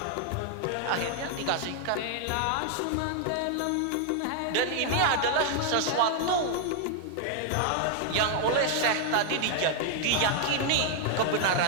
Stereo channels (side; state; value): both; different; correlation 0.00